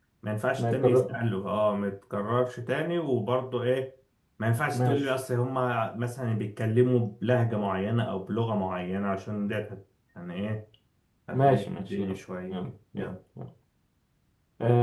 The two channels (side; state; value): both; identical; correlation 1.00